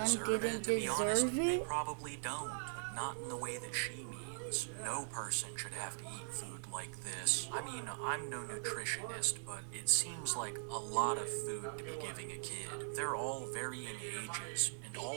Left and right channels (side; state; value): left; silent; digital silence